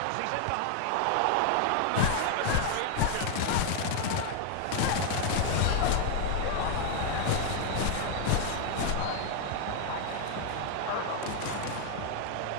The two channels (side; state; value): both; different; correlation 0.00